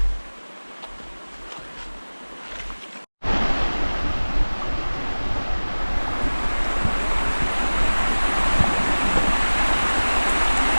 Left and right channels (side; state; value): both; inverted; correlation -1.00